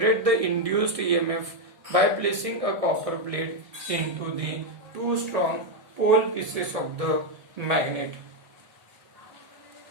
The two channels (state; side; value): late; left; 1.6 ms